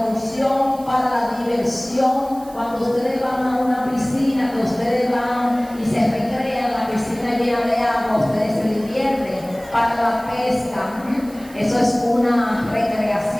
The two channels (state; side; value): noise; right; hiss, 22 dB below the sound